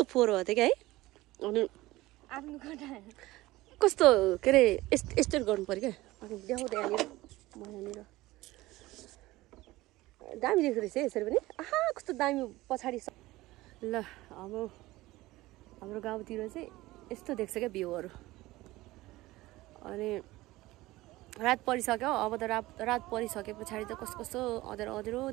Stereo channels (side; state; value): left; quieter; 18.5 dB